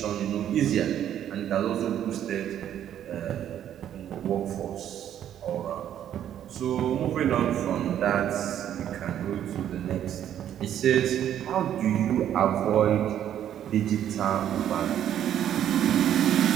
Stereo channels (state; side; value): quieter; left; 10.5 dB